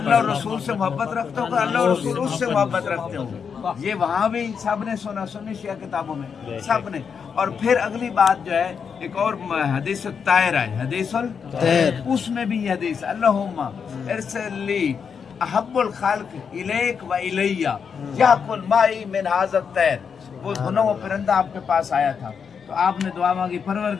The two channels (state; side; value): quieter; right; 6.5 dB